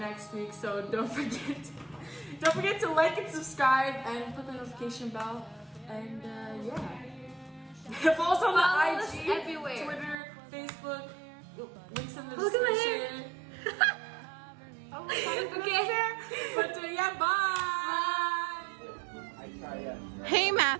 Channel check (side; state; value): left; drops out; at 10.2 s